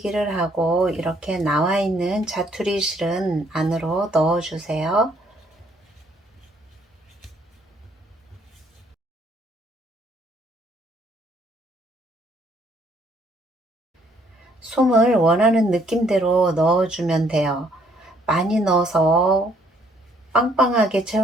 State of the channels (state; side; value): normal; both; correlation 0.66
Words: 하고 이렇게 나와 있는 자투리 실은 안으로 넣어주세요. 솜을 원하는 느낌대로 넣어주면 돼요. 많이 넣어서 빵빵하게